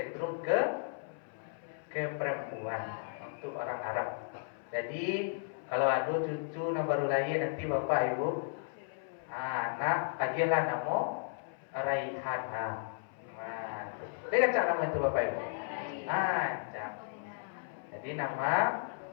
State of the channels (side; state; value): right; silent; 55 dB below the other